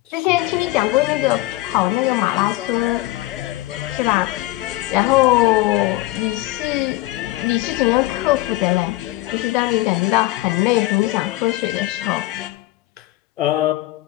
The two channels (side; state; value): right; quieter; 18.2 dB